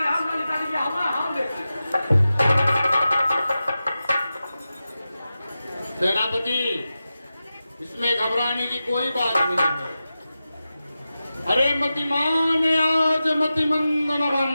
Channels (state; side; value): inverted; both; correlation -0.93